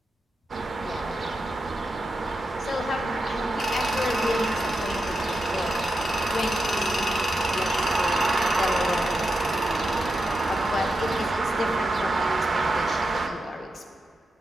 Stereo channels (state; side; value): normal; both; correlation 0.88